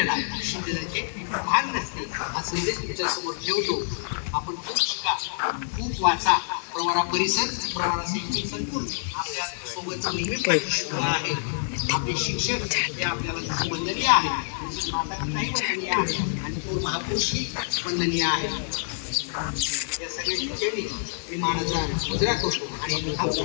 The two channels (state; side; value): silent; right; 60 dB below the other